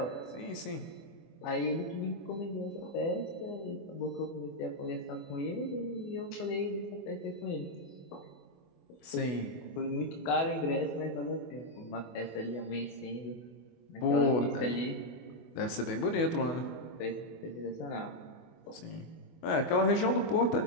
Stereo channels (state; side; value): late; right; 24 ms